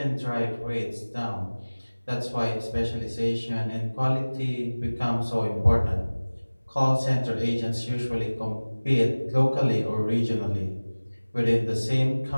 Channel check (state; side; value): inverted; both; correlation -1.00